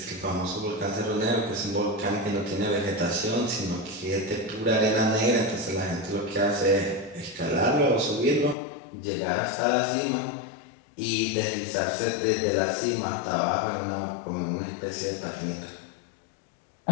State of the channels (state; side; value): drops out; right; at 8.6 s